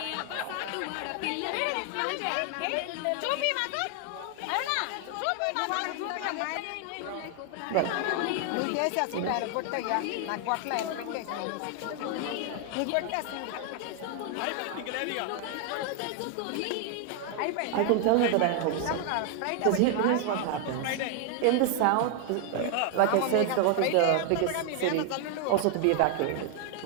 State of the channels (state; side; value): different; both; correlation 0.00